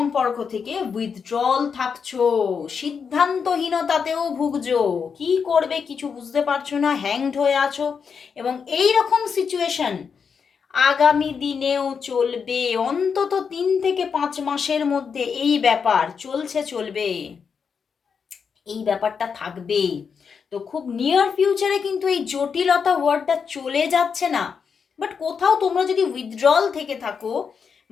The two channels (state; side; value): quieter; right; 6.2 dB